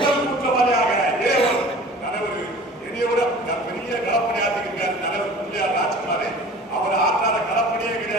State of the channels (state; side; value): normal; both; correlation 0.43